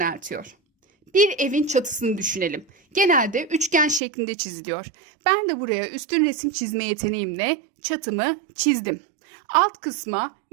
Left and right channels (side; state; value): left; drops out; at 4.0 s